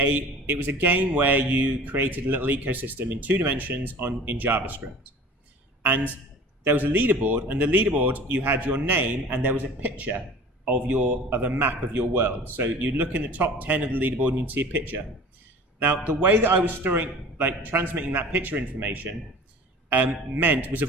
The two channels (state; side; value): normal; both; correlation 0.42